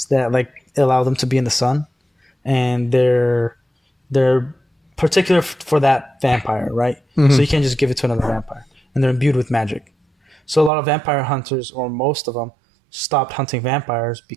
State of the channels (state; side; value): drops out; left; at 10.7 s